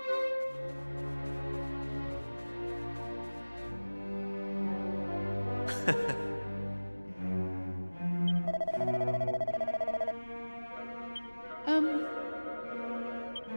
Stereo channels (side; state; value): both; inverted; correlation -1.00